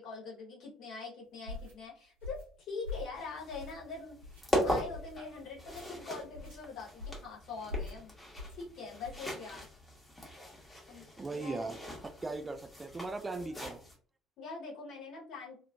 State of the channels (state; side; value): normal; both; correlation 0.60